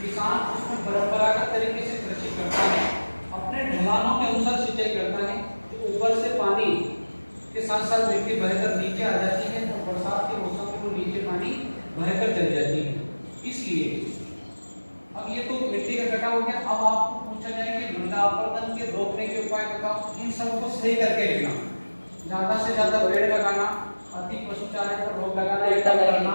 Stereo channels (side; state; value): both; inverted; correlation -1.00